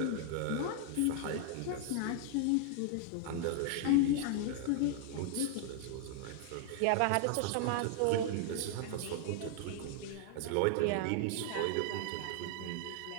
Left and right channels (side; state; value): both; different; correlation 0.00